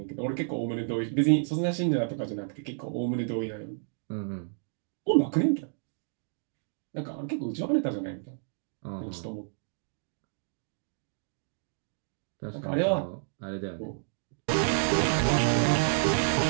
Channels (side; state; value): left; silent; digital silence